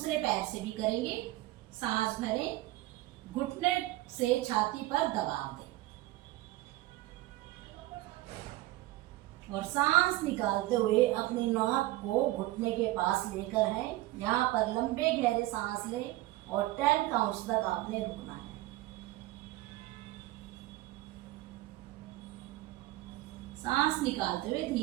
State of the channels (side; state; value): left; quieter; 17.6 dB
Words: पैर से भी करेंगे। सांस भरें, घुटने से छाती पर दबाव दें और सांस निकालते हुए अपनी नाक को घुटने के पास लेकर है। यहाँ पर लंबे गहरे सांस लें और 10 काउंट्स तक आपने रुकना है। सांस निकालते हुए